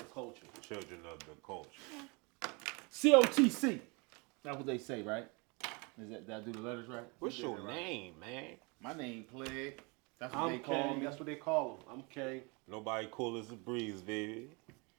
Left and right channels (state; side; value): quieter; left; 29.9 dB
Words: culture. Children of the culture. COTC. That's what they say, right? Did I do the letters right? What's You did your it right. name, man? My name Plague. That's what I'm they call King. me. That's what they call him. I'm King. Nobody cool as a breeze, baby.